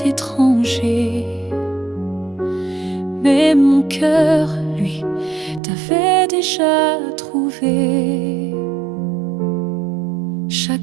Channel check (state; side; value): drops out; left; at 5.6 s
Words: étrangers, mais mon cœur, lui, t'avait déjà trouvé.